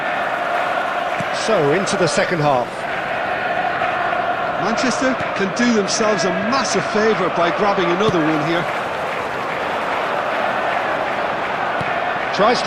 So, into the second half. Manchester can do themselves a massive favour by grabbing another one here. Tries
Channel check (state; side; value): identical; both; correlation 1.00